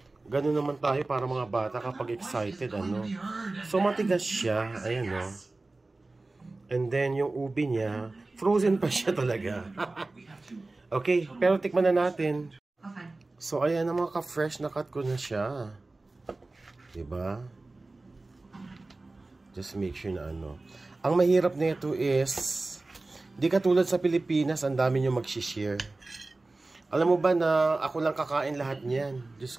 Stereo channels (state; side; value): quieter; left; 3.2 dB